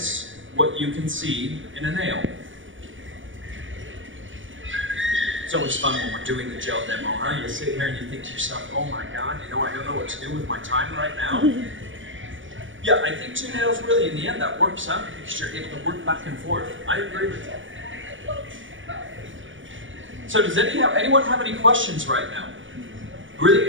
what you can see in a nail. It's always fun when we're doing the gel demo, huh? You sit here and you think to yourself, oh my God, you know, I don't know what to do with my time right now. Yeah, I think 2 nails really, in the end, that works out because you're able to work back and forth. I agree with you. So does anyone have any questions right now?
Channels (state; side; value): late; left; 0.56 ms